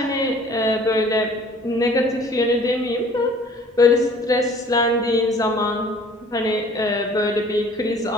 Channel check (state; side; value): normal; both; correlation 0.52